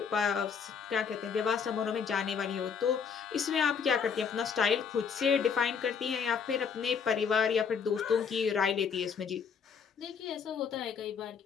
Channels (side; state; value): right; quieter; 6.4 dB